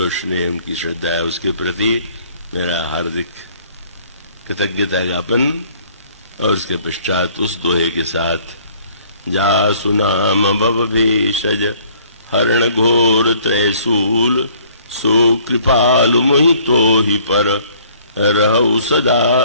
स्नेह उनकी श्रद्धा है उसके प्रति मेरा हार्दिक कृतज्ञता ज्ञापन। और उसके पश्चात उस दोहे के साथ, जासु नाम भव भेषज हरण घोर त्रैसूल, सो कृपालु मोहि तो ही पर रहु सदा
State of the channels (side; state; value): both; inverted; correlation -0.58